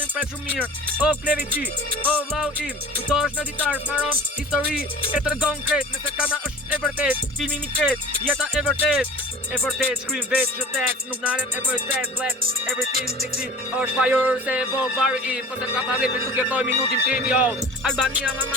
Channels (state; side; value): normal; both; correlation 0.41